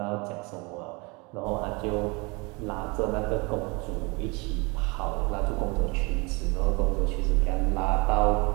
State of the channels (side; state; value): left; quieter; 28.1 dB